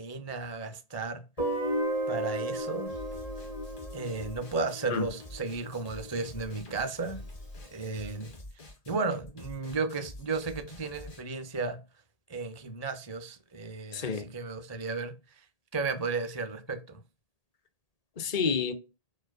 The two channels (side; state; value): right; late; 1.8 ms